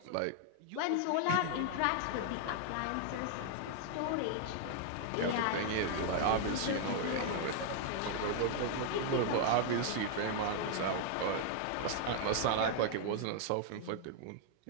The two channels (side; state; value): both; different; correlation 0.00